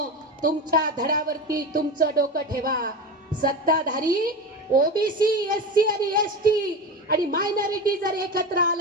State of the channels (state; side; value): normal; both; correlation 0.24